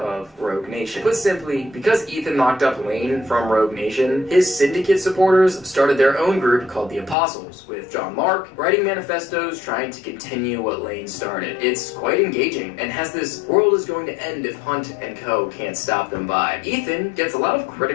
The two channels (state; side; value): drops out; right; at 7.2 s